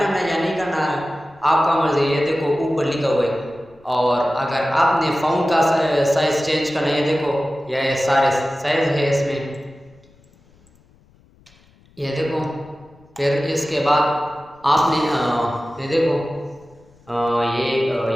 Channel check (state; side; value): noise; left; rumble, 30 dB below the sound